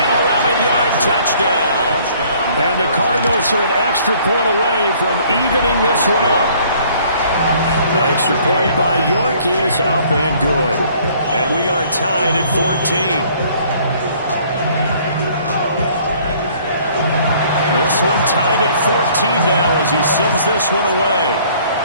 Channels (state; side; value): inverted; both; correlation -0.58